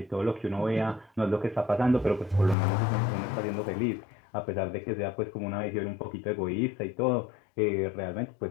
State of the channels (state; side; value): drops out; right; at 2.6 s